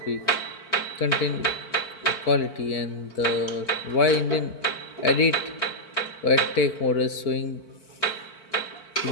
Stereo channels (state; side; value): late; right; 4.5 ms